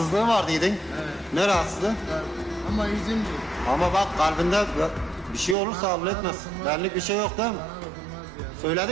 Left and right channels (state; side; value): drops out; left; at 5.6 s